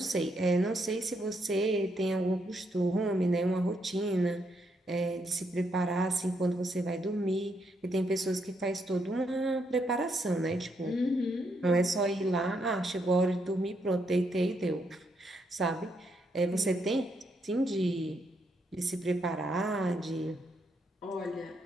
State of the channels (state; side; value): normal; both; correlation 0.77